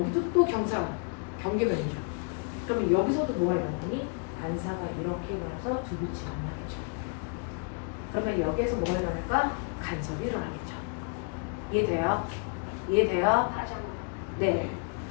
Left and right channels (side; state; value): right; quieter; 37.2 dB